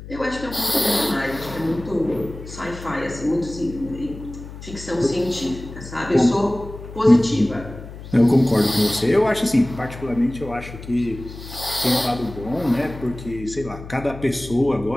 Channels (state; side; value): noise; left; hum, 13 dB below the sound